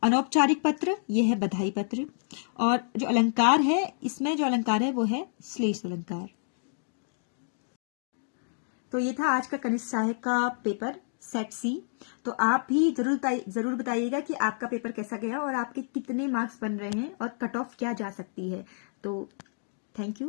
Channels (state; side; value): silent; right; digital silence